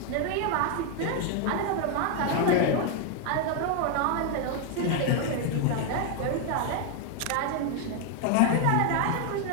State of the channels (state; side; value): different; both; correlation 0.00